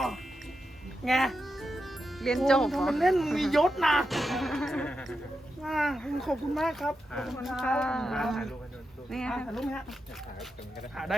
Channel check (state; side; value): normal; both; correlation 0.88